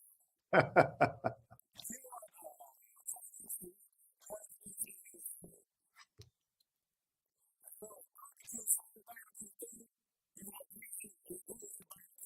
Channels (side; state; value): both; identical; correlation 1.00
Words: If you want Chinese food, you want it to be Chinese food. If you want soul barbecue food, you want greasy, it's greasy